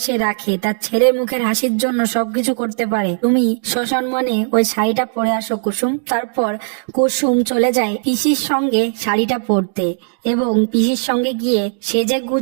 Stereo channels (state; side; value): silent; left; digital silence